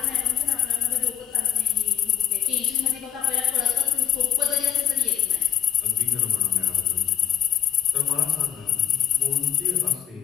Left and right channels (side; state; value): right; quieter; 9.7 dB